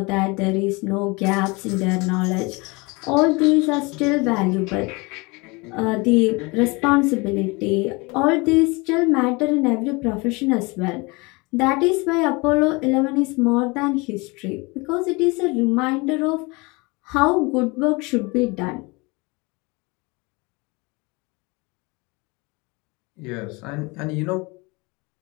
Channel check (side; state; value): right; quieter; 26.6 dB